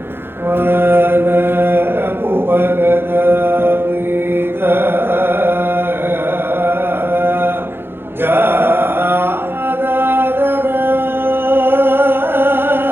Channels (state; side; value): late; left; 0.10 ms